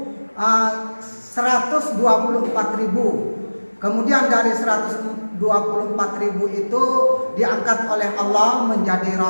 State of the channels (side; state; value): both; inverted; correlation -1.00